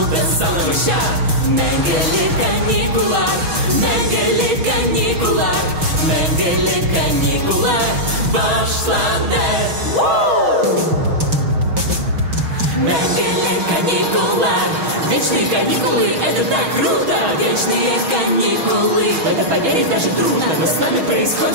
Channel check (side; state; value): left; late; 6.2 ms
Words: солнышка. Менгели каникулар, менгели каникулар, менгели каникулар, башланде. Менгели каникулар. Вечные каникулы, это так круто! Вечные каникулы, в это поверить даже трудно. Но с нами